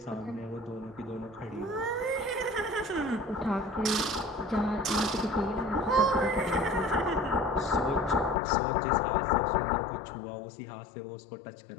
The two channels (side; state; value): right; drops out; at 8.3 s